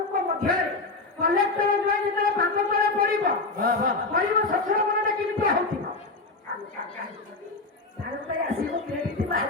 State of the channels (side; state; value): right; quieter; 3.5 dB